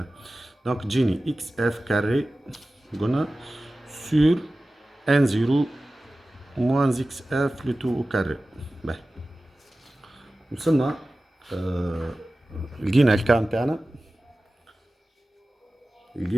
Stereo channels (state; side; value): normal; both; correlation 0.96